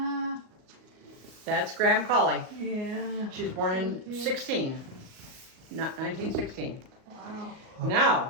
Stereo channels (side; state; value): left; late; 38 ms